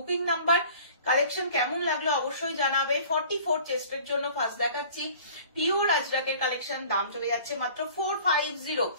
নাম্বার। কালেকশন কেমন লাগলো অবশ্যই জানাবে। 44 চেস্টের জন্য ফার্স্ট দেখাচ্ছি পিওর আজরাকের কালেকশন, দাম চলে যাচ্ছে মাত্র 450,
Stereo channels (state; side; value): inverted; both; correlation -0.47